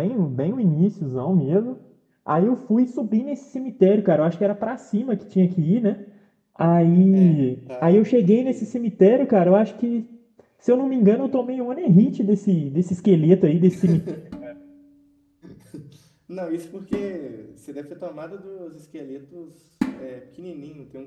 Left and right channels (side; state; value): both; identical; correlation 1.00